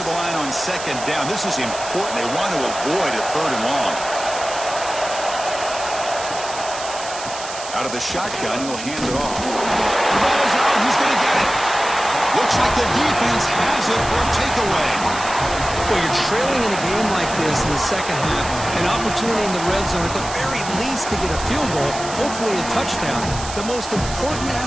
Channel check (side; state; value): right; noise; hiss, 10 dB below the sound